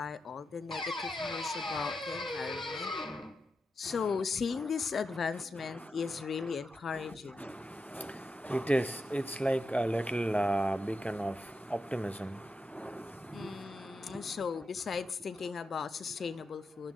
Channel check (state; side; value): normal; both; correlation 0.87